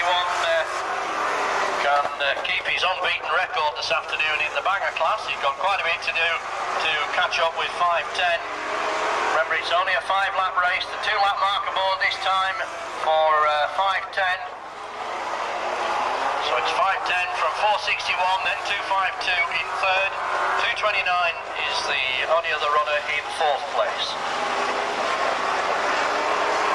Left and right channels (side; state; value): both; identical; correlation 1.00